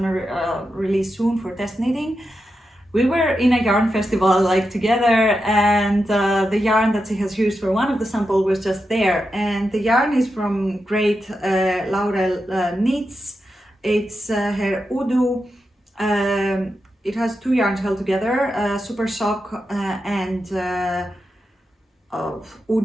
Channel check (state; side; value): normal; both; correlation 0.88